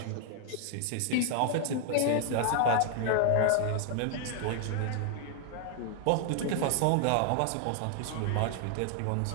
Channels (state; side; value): different; both; correlation 0.00